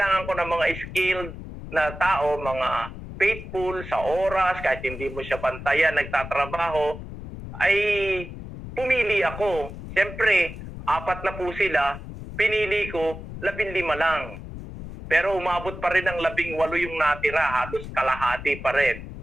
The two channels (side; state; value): left; noise; rumble, 11 dB below the sound